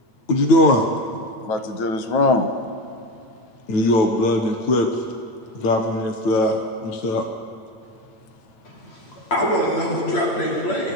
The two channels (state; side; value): late; right; 8.7 ms